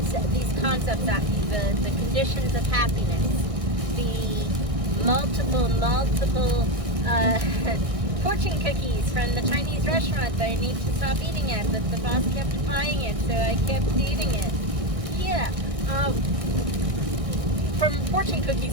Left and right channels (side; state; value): left; late; 1.6 ms